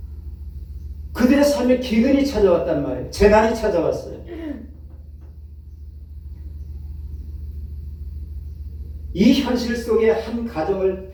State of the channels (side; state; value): both; identical; correlation 1.00